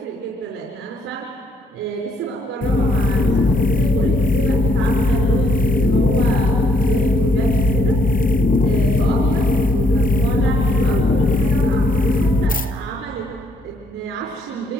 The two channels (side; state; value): both; normal; correlation 0.69